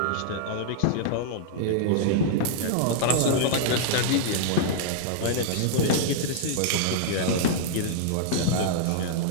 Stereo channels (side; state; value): both; different; correlation -0.01